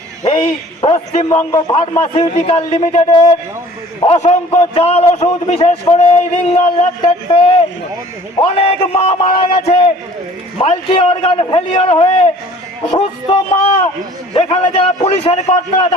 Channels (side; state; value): both; normal; correlation 0.50